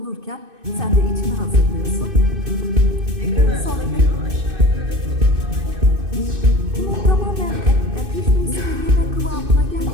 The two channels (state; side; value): late; left; 2.6 ms